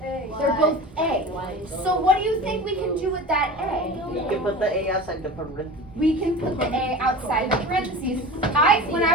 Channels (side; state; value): both; normal; correlation 0.34